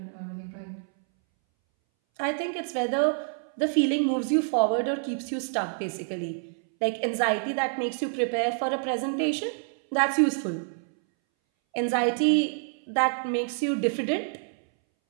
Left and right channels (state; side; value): silent; left; 60 dB below the other